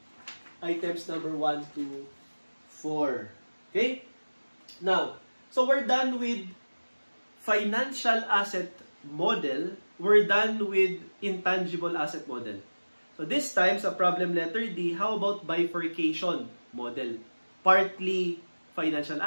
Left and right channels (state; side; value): inverted; both; correlation -1.00